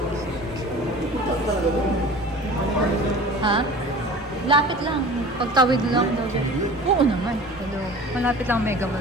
Ha? Lapit lang. Pagtawid lang daw dyan. Oo naman. Hello. Malapit lang Mega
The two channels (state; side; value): normal; both; correlation 0.41